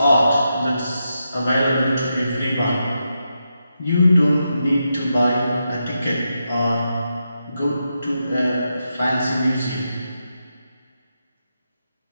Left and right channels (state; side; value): inverted; both; correlation -0.86